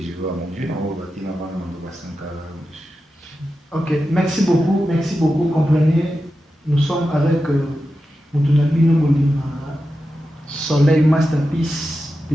je veux à mon Dieu, on va bâtir avant de Sankara. Ok, merci beaucoup. Comprenez, nous sommes avec Moutounabino Molima, Soleil Masterpiece,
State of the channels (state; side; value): normal; both; correlation 0.91